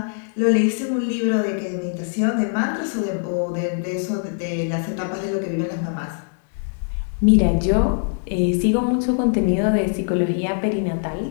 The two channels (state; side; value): silent; right; 64 dB below the other